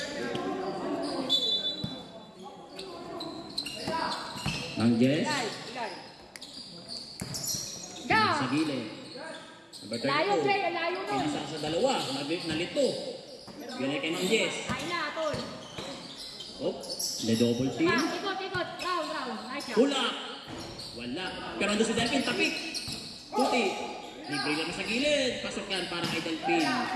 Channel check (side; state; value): both; identical; correlation 1.00